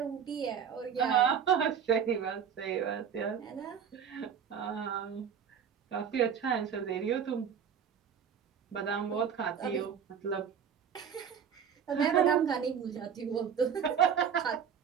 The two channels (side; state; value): left; quieter; 7.7 dB